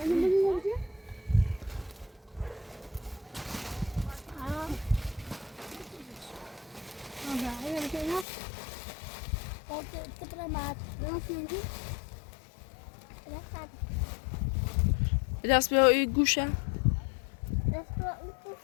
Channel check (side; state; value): right; drops out; at 8.2 s